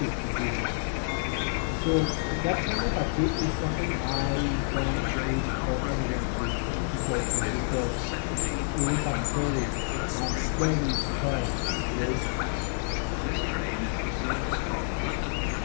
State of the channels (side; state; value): right; silent; 59 dB below the other